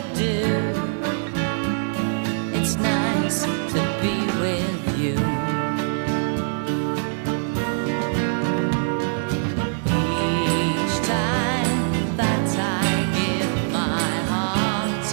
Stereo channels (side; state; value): left; silent; digital silence